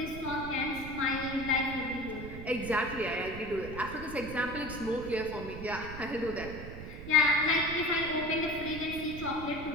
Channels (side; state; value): right; noise; rumble, 10 dB below the sound